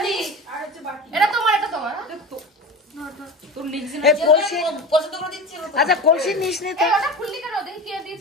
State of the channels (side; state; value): both; normal; correlation 0.29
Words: এটা তোমার, এটা তোমার। তোর লিখছি এই কলসি, পছন্দ করে দিচ্ছি। আচ্ছা কলসি নিস নি তো? এই ওটা খুললি কেন? দেখি কে